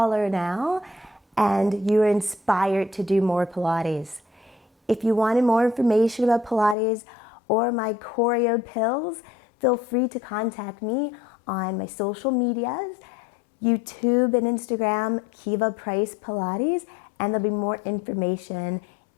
now and you're inspired to do more Pilates. If you wanted more information about Pilates or my choreo pills, feel free to contact me on my social medias, YouTube and Instagram, Kiva Price Pilates, and there'll be more information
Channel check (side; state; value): right; drops out; at 6.8 s